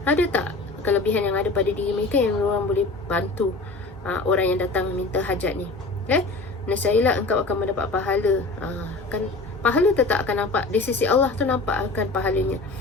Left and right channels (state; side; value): quieter; right; 3.3 dB